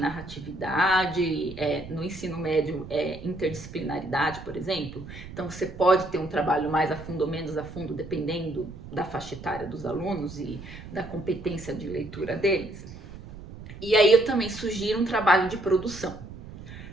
no ensino médio, interdisciplinaridade, por exemplo. Então, você pode ter um trabalho mais a fundo ou menos a fundo, dependendo da faixa etária dos alunos e da competência de leitura deles. E aí eu também sugiro um trabalho de produção,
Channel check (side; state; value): right; noise; rumble, 14 dB below the sound